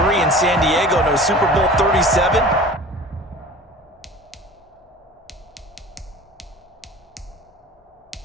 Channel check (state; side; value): normal; both; correlation 0.41